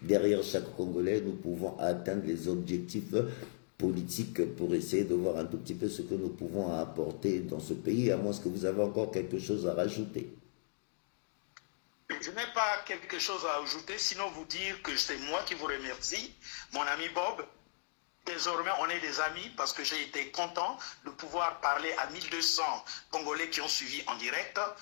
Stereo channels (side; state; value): right; silent; digital silence